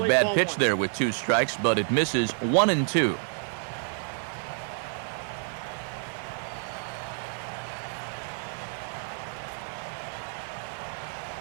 bad pitch there with 2 strikes, but it misses 1-2.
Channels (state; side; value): silent; left; 59 dB below the other